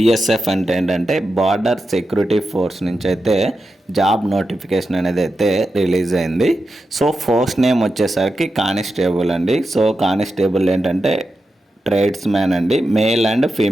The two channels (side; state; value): both; normal; correlation 0.89